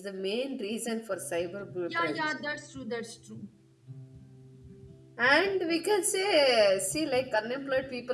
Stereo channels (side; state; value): both; identical; correlation 1.00